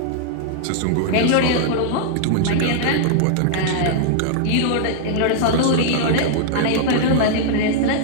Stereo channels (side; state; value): both; different; correlation -0.01